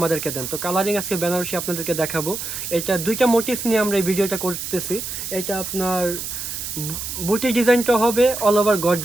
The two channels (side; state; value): right; noise; hiss, 6 dB below the sound